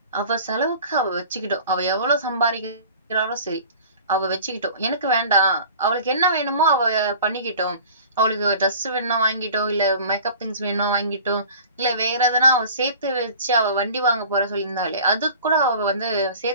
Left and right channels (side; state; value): both; inverted; correlation -0.43